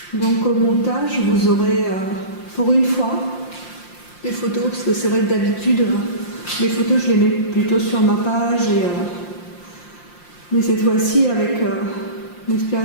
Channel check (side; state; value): right; late; 5.7 ms